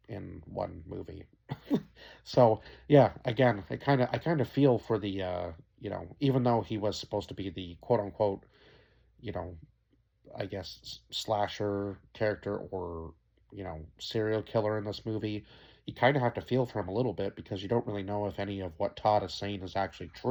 in one movie. So yeah, again, I kind of feel for the even though he was supposed to be the quote unquote, you know, I guess slasher character or serial killer in this movie, you kind of have to feel for him a little bit because you don't really know if any of what Todd is saying is actually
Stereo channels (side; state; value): both; identical; correlation 1.00